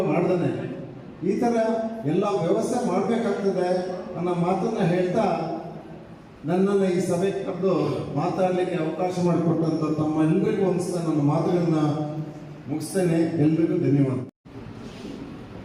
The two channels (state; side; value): identical; both; correlation 1.00